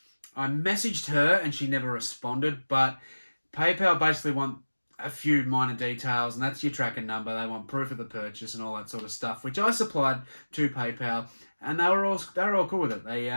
I messaged her and she never responded, but PayPal basically want a few minor details, and that's your tracking number. They want proof of the purchase and all that sort of stuff, which I supplied to PayPal, and they were all cool with it. They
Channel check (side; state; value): both; inverted; correlation -1.00